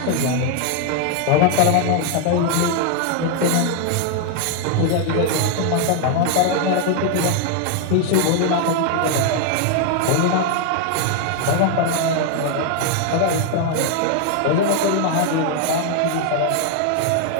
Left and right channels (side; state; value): both; different; correlation 0.00